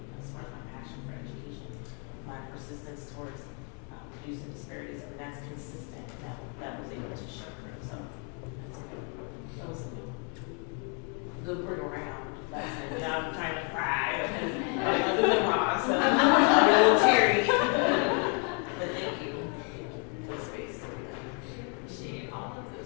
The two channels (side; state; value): right; quieter; 39.1 dB